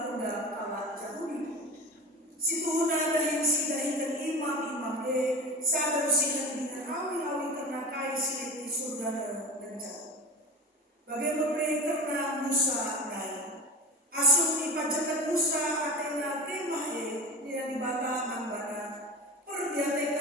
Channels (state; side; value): normal; both; correlation 0.28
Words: kalah Yahudi. Situhuna dahin si dahinkan imam-imam sadar sinan dengan awi-awi karena kai silit di surga dan jauh. Bagai pemere karena Musa naik. Asum ipajakan Musa atena kemahe dia dibata mangbana.